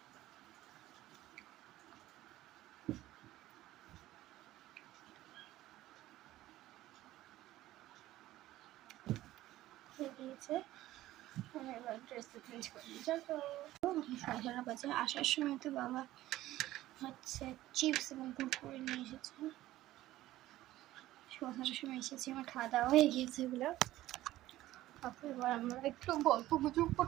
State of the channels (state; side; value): quieter; left; 15.4 dB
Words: হয়ে গিয়েছে, এবার ড্রেসটা চেঞ্জ করে নিই। চলো 11:30 বাজে। আসার সময় তো বাবা হচ্ছে চিপস এবং কুরকুরে নিয়ে এসেছে। 11:30 সময় এসেছি, আমার খাওয়া দাওয়া হয়ে গিয়েছে এগুলো। তারপর এবার আমরা একটু গল্প গুজব